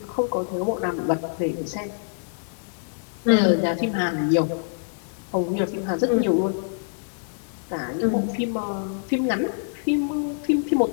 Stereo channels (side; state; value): right; silent; digital silence